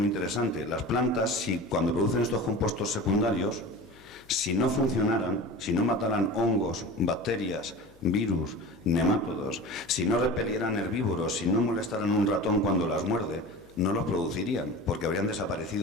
interesante. Las plantas, cuando producen estos compuestos secundarios, si no funcionaran, si no mataran hongos, bacterias, virus, nemátodos, si no repelieran herbívoros, si no molestaran un ratón cuando las muerde, no los producirían, porque habrían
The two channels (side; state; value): left; noise; hum, 27 dB below the sound